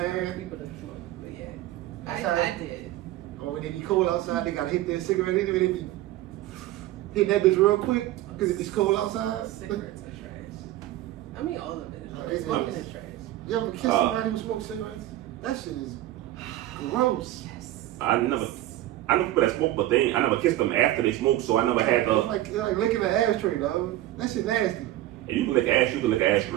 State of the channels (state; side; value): quieter; left; 14.8 dB